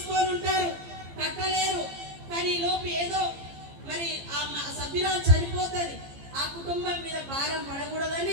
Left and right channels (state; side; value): late; left; 15 ms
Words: ఉంటారు, కట్టలేరు, కానీ లోపు ఏదో మరి ఆ సభ్యురాలు చనిపోతుంది, ఆ కుటుంబం మీద భారం